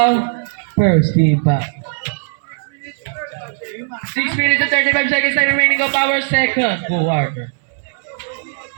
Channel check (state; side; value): silent; left; 67 dB below the other